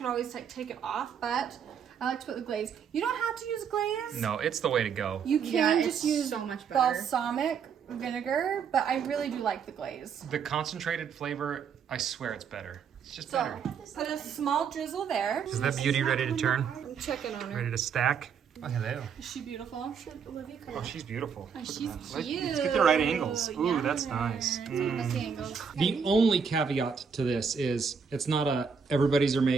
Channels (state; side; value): quieter; left; 6.6 dB